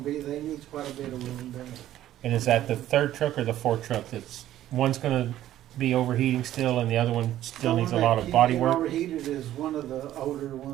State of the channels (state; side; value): quieter; left; 13.0 dB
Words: be, they need quite a bit of welding done. and is that the 3rd truck or the 4th truck that's, one's gonna be overheating still and the other one still needs a lot of body work? Overheated is one of the older